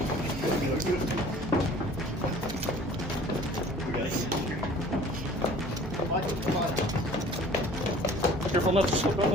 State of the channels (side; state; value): both; normal; correlation 0.49